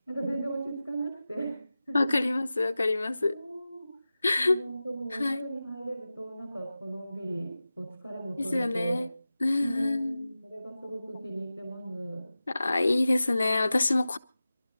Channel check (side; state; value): both; inverted; correlation -0.95